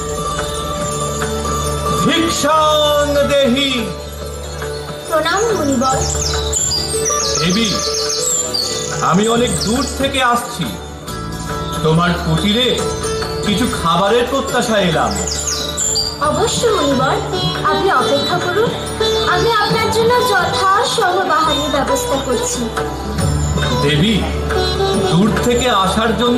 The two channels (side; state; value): both; identical; correlation 1.00